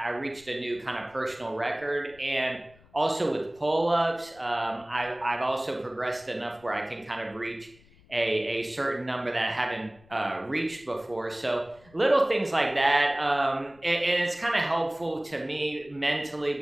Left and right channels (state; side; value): noise; left; rumble, 27 dB below the sound